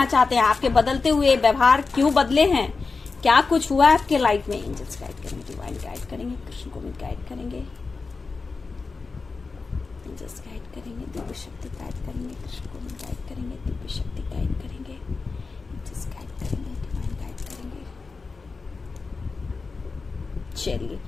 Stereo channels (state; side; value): quieter; right; 4.3 dB